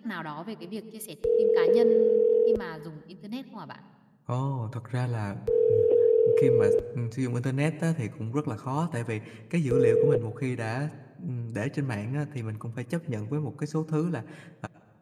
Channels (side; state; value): both; identical; correlation 1.00